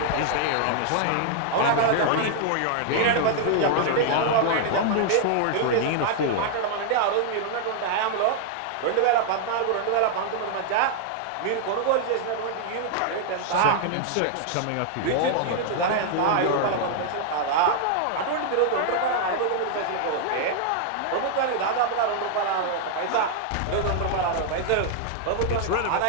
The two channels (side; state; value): both; different; correlation -0.01